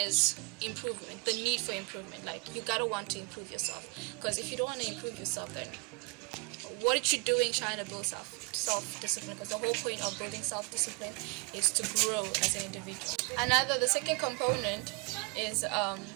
improvement, the need for improvement. Like you gotta want to improve yourself, because if you don't want to improve yourself, then what are you doing trying to build self-discipline? Because the whole point of building self-discipline is to grow as an individual. The second component is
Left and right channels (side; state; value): left; quieter; 31.5 dB